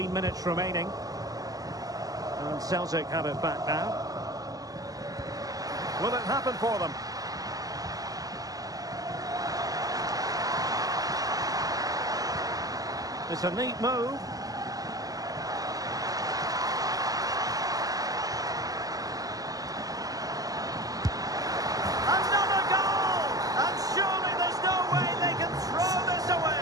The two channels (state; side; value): late; left; 0.17 ms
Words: minutes remaining. And Celtic have it back now. Will it happen for them? It's a neat move. Another goal! And surely there's no way they can throw this